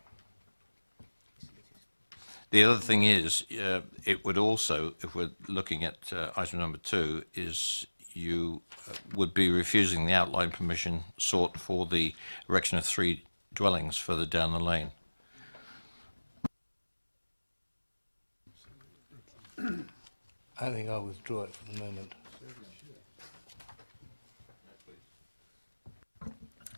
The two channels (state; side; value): inverted; both; correlation -1.00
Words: The other thing is, it would also, if we're looking at item number 2, is you would be refusing the outline permission sought for the erection of 3 dwellings further down the lane. I think I'll withdraw it for the moment.